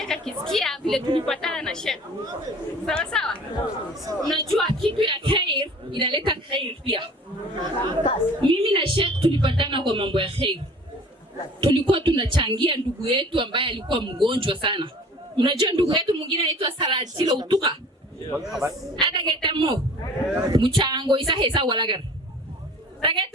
akisikia vile tulipatana na Sheikh. Sawa sawa? Unajua kitu ya khair inaleta khair pia. Mimi na Sheikh tulipatana kwa mambo ya khair. Tulikuwa tunachangia ndugu yetu ambaye alikuwa mgonjwa sana. Unajua ndugu yetu mwingine anaitwa Sarajilo Utuka. Ada getamo. Mchango isa hesa walagar.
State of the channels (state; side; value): normal; both; correlation 0.46